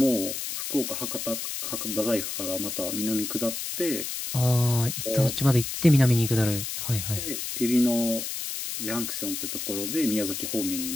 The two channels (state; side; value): noise; left; hiss, 5 dB below the sound